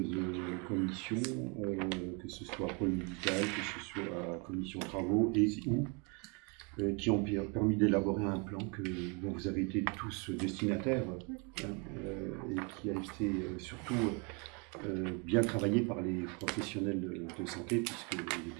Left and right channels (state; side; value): quieter; left; 32.9 dB